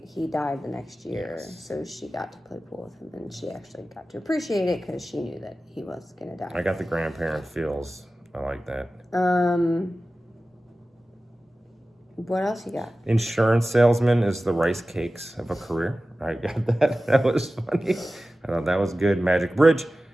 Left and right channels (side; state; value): both; normal; correlation 0.95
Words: he died the next year. Yes. So she got to play pool with him, and she actually got to appreciate it because she knew that he was going to die. I got the grandparent feels. I like that. What else you got? Insurance salesman is the rice cakes of a career. I got that. That was funny. I thought that was good. Magic Bridge.